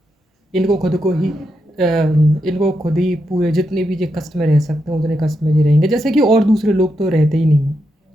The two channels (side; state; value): both; normal; correlation 0.84